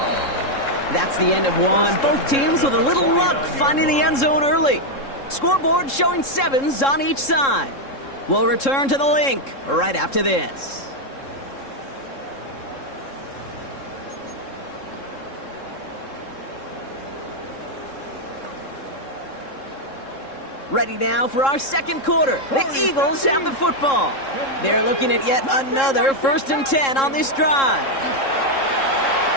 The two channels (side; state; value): right; late; 3.7 ms